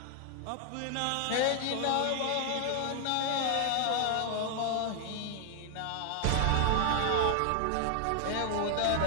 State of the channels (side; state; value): both; different; correlation 0.00